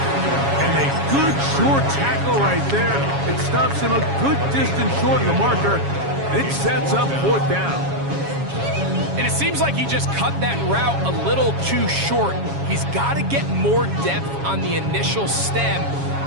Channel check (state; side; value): late; left; 7.2 ms